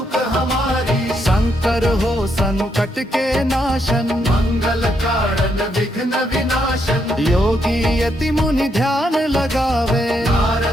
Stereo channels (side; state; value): both; normal; correlation 0.77